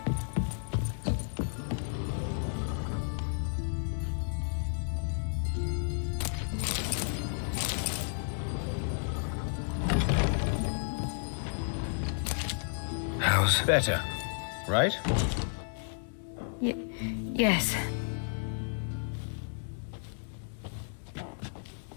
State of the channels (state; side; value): silent; right; digital silence